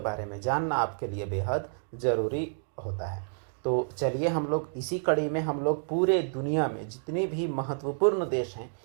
में जानना आपके लिए बेहद ज़रूरी होता है। तो चलिए हम लोग इसी कड़ी में हम लोग पूरे दुनिया में जितने भी महत्वपूर्ण देश हैं,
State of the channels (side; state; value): left; silent; digital silence